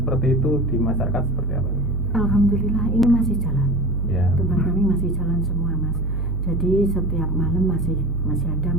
itu di masyarakat seperti apa? Alhamdulillah ini masih jalan. Ya. Tempat kami masih jalan semua Mas. Jadi setiap malam masih ada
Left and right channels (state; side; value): normal; both; correlation 0.33